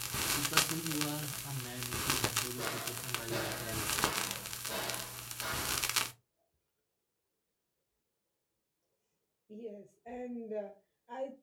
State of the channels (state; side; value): identical; both; correlation 1.00